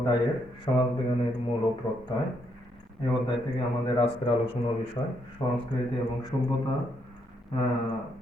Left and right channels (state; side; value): normal; both; correlation 0.75